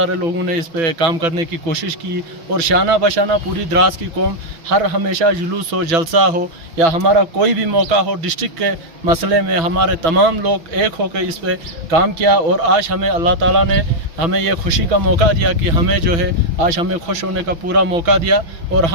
लोगों ने इस पे काम करने की कोशिश की। और शाना बशाना पूरी द्रास की कौम हर हमेशा जुलूस हो, जलसा हो या हमारा कोई भी मौका हो, डिस्ट्रिक्ट के मसले में हमारे तमाम लोग एक होकर इस पे काम किया। और आज हमें अल्लाह ताला ने हमें ये खुशी का मौका दिया कि हमें जो है आज हमें खुश होने का पूरा मौका दिया और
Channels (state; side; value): late; left; 6.0 ms